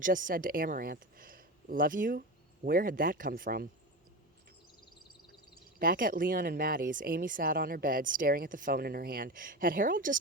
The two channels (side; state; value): both; normal; correlation 0.23